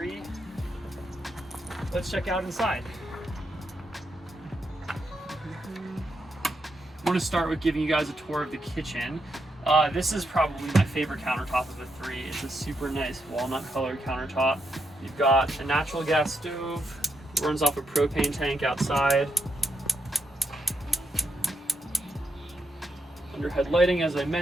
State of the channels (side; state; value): both; normal; correlation 0.81